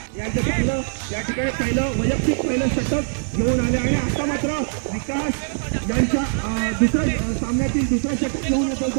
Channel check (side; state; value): left; silent; 58 dB below the other